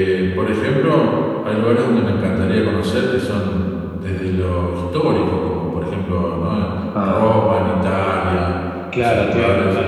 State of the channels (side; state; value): both; identical; correlation 1.00